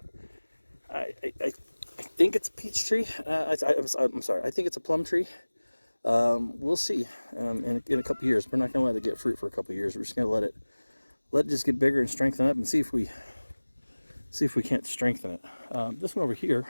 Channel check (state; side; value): inverted; both; correlation -1.00